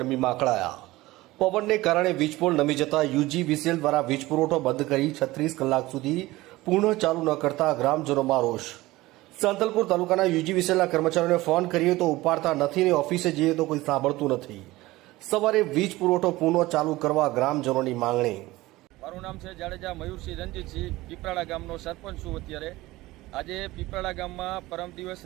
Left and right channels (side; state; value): left; quieter; 18.8 dB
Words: અકળાયા. પવનને કારણે વીજ પોલ નમી જતા યુજીવીસીએલ દ્વારા વીજ પુરવઠો બંધ કરી 36 કલાક સુધી પૂર્ણ ચાલુ ન કરતા ગ્રામજનોમાં રોષ. સાંતલપુર તાલુકાના યુજીવીસીએલના કર્મચારીઓને ફોન કરીએ તો ઉપાડતા નથી ને ઓફિસે જઈએ તો કોઈ સાંભળતું નથી. સવારે વીજ પુરવઠો પૂર્ણ ચાલુ કરવા ગ્રામજનોની માંગણી. મારું નામ છે જાડેજા મયુરસિંહ રણજીતસિંહ. પીપળાણા ગામનો સરપંચ છું અત્યારે. આજે પીપળાણા ગામમાં પરમ દિવસ